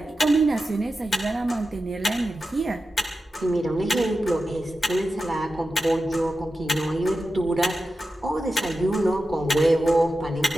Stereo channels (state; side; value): normal; both; correlation 0.92